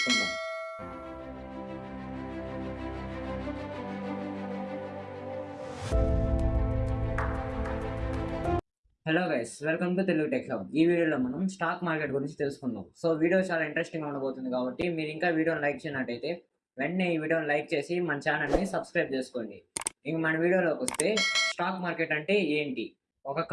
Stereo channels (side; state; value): both; identical; correlation 1.00